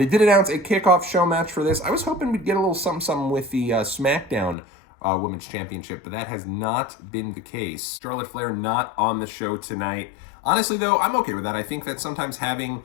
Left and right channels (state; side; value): drops out; right; at 4.5 s